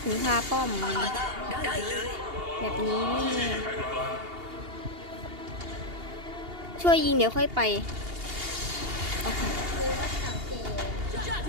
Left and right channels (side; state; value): left; late; 2.8 ms